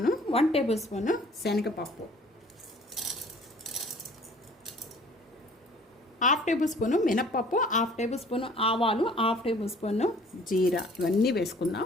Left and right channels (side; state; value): both; normal; correlation 0.53